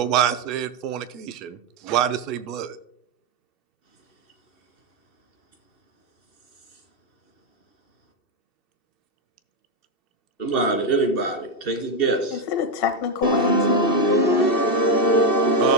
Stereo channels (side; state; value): right; late; 2.7 ms